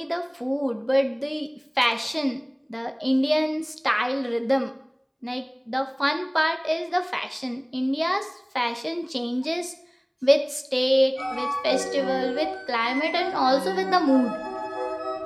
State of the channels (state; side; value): identical; both; correlation 1.00